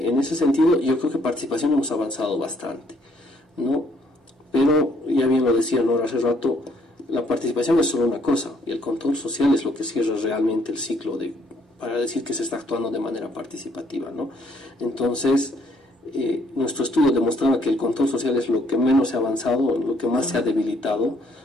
ese sentido, yo creo que participación hemos avanzado bastante, ¿no? Pero, ya bien lo decía Nora hace rato, la participación es solo una cosa, y el control social es lo que cierra realmente el ciclo para decir que se está actuando de manera participativa, ¿no? Entonces, nuestro estudio demostraba que el control social es lo que menos se ha avanzado, lo que más se ha debilitado,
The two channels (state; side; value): normal; both; correlation 0.67